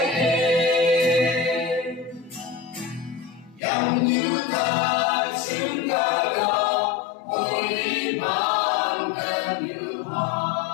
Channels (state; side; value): drops out; right; at 3.6 s